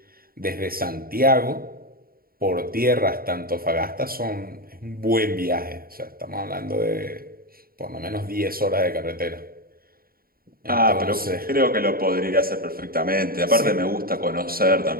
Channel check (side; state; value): left; late; 0.43 ms